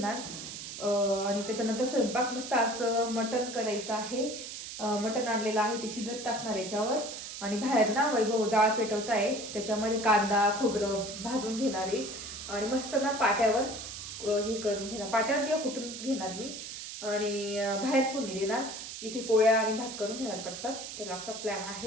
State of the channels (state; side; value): noise; right; hiss, 9 dB below the sound